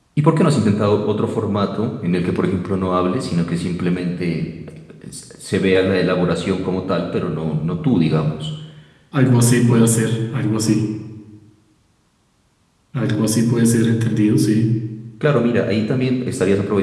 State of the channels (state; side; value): identical; both; correlation 1.00